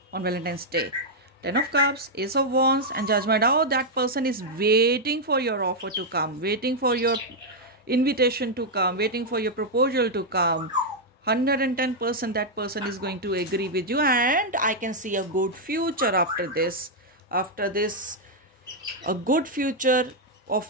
on Valentine's Day. Ten of Cups, Ace of Wands, and Judgment. Oh, that person is waiting for your offer to come, waiting for your invitation to come, waiting for your proposal to come. 110% that person is going to agree with you, and I can see a good future after this. After this, a good future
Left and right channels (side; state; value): both; normal; correlation -0.02